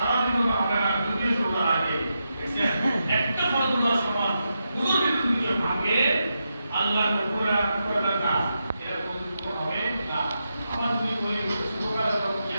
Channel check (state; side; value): inverted; both; correlation -0.86